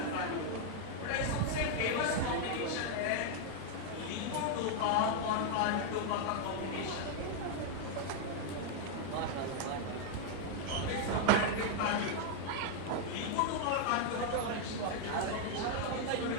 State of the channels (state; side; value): different; both; correlation 0.00